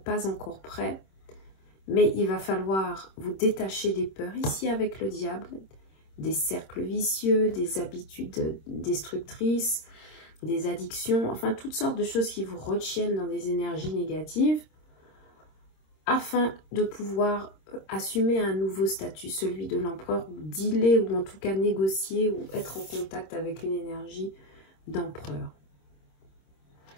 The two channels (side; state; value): right; late; 26 ms